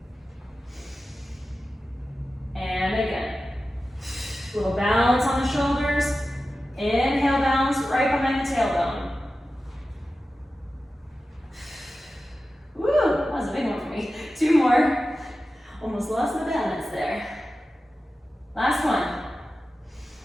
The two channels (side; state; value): both; normal; correlation 0.94